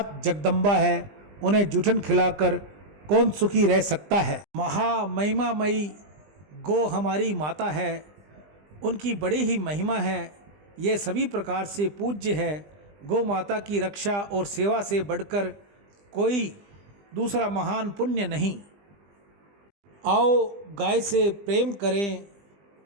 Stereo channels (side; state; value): left; late; 20 ms